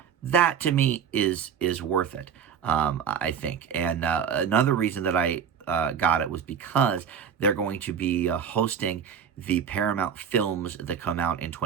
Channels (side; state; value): left; quieter; 7.6 dB